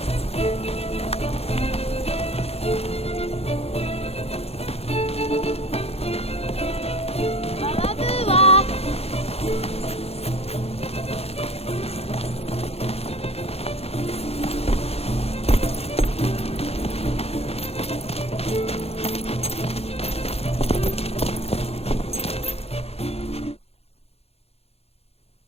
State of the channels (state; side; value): late; right; 0.29 ms